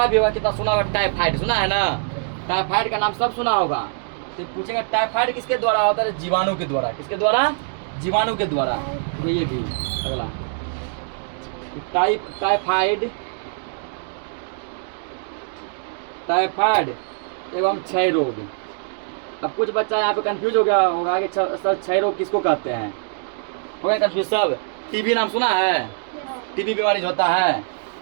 भी होगा, कितना सुना होगा, टाइफाइड सुना है ना। टाइफाइड का नाम सब सुना होगा। तो पूछेगा टाइफाइड किसके द्वारा होता है, जीवाणु के द्वारा। किसके द्वारा, जीवाणु के द्वारा। तो ये भी अगला टाइफाइड एवं क्षय रोग। अब कुछ बच्चा यहाँ पे कंफ्यूज हो गया होगा कि सर क्षय रोग किसको कहते हैं, हो गया कंफ्यूज सब। टीबी नाम सुना है, टीबी बीमारी जो होता है,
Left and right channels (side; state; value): left; silent; digital silence